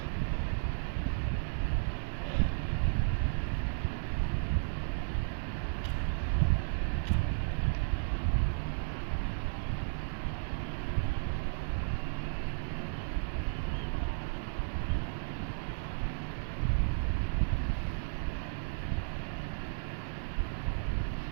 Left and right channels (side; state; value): left; silent; 55 dB below the other